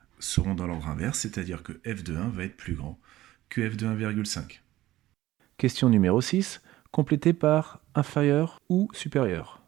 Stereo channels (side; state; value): left; quieter; 15.6 dB